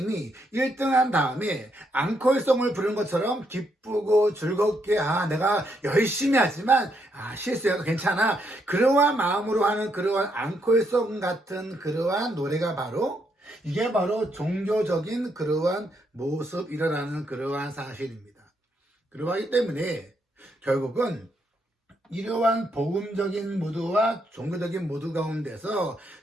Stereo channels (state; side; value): normal; both; correlation 0.77